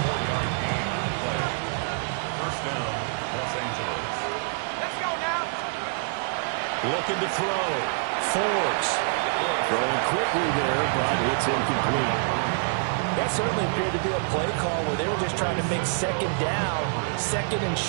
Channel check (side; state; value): left; silent; digital silence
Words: Looking to throw. Forbes. Throwing quickly there, but it's incomplete. That certainly appeared to be a play call where they were just trying to make 2nd down, 2nd and